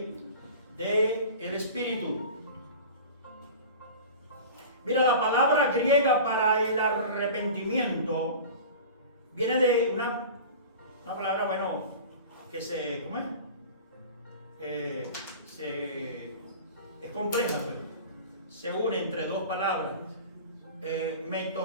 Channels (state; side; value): inverted; both; correlation -0.36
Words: del Espíritu. Mira, la palabra griega para el arrepentimiento viene de una palabra, bueno, que se, ¿cómo es? es compleja, pero se une entre dos palabras.